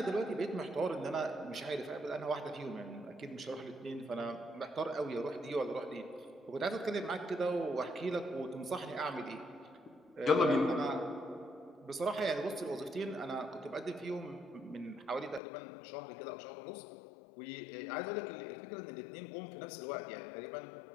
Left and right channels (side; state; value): right; drops out; at 15.4 s